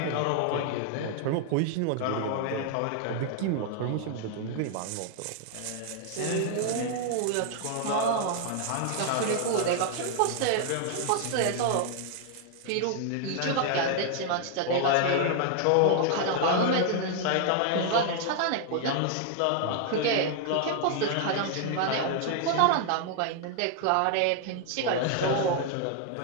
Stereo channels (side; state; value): both; different; correlation 0.00